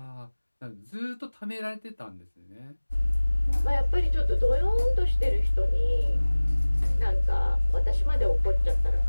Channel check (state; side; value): inverted; both; correlation -1.00